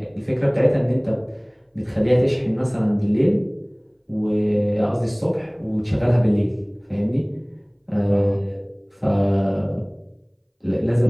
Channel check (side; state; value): both; identical; correlation 1.00